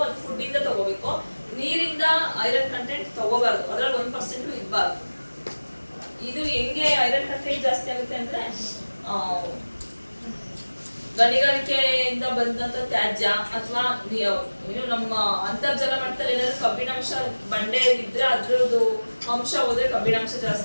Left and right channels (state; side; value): inverted; both; correlation -1.00